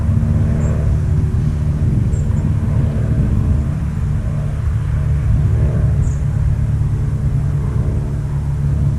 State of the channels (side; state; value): both; identical; correlation 1.00